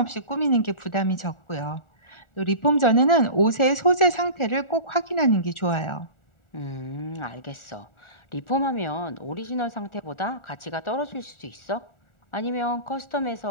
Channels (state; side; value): late; right; 1.4 ms